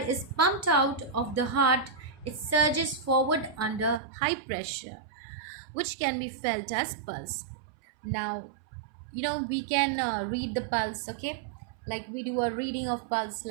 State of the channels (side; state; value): left; drops out; at 4.0 s